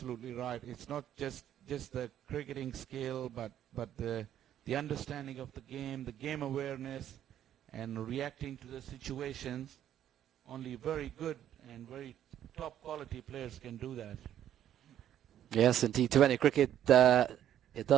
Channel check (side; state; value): left; quieter; 10.9 dB